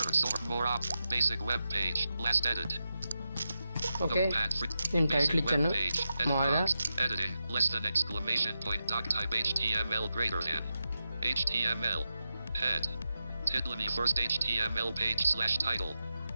sort more up, basic web page, last edit. Okay, నేను టైటిల్ ఇచ్చాను మామూలుగా. Editing, less than exclamation point, doc type HTML greater than. HTML, head. Title me first HTML page slash title,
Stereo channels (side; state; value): both; inverted; correlation -0.89